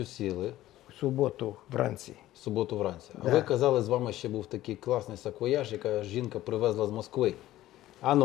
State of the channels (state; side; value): quieter; right; 14.9 dB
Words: сіли, В суботу вранці. в суботу вранці. А Да. ви казали, з вами ще був такий класний саквояж, яка жінка привезла з Москви. А